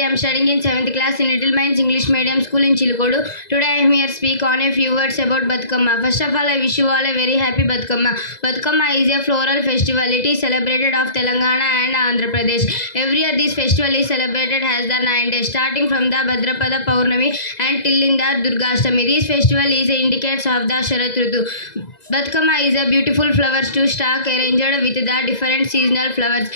am studying in 7th class in Little Minds English Medium School in Chilkodu. Today I am here to speak on a few words about Batukama. First of all, I wish you all a very happy Batukama. Batukama is a floral festival. It is celebrated of Telangana and Andhra Pradesh. Every year this festival is celebrated as the 9 days, starting from the Bhadrapada Paurnami and till in the Durgashtami. This festival is indicates of the Sharat Ritu. Batukama is a beautiful flowers to stalk arranged with the different seasonal flowers.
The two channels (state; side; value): late; right; 2.0 ms